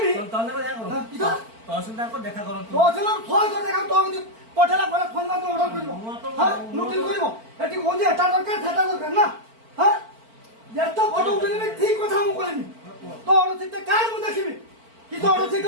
তলে দেখা করুন কিতো তহসিলদার কো দেখা করুন তো চলো ফোন করে দেখা তো পঠালা বলে ফোন না তো অর্ডার করিব হ্যাঁ নোটিস করিব এটি কোন যে এটা দরকার সেটা দরকার না হ্যাঁ যেটা ফটো উঠেবি ঠিক কথা মু কইনি তো অর্ডার দিতে কার মু দেখিবি কি তো অর্ডার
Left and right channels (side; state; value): left; late; 4.5 ms